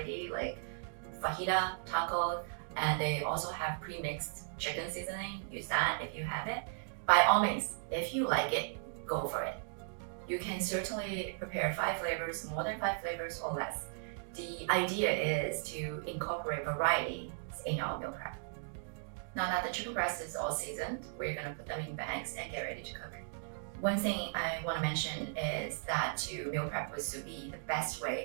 like fajita, taco, and they also have pre-mixed chicken seasoning. Use that if you have it. By all means, if you like it, go for it. You can certainly prepare 5 flavors, more than 5 flavors or less. The idea is to incorporate variety in our meal prep. Now that the chicken breast is all seasoned, we're gonna put them in bags and get ready to cook. One thing I wanna mention is that to meal prep with sous vide, the best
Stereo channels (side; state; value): left; silent; digital silence